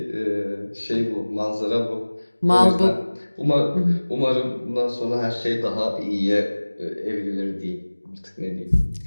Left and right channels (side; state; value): both; inverted; correlation -1.00